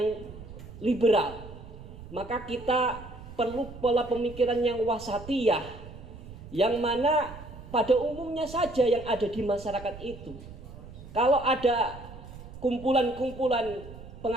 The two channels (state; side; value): noise; right; rumble, 15 dB below the sound